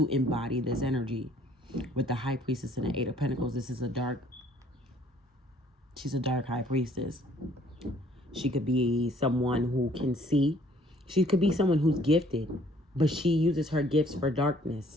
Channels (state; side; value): normal; both; correlation 0.60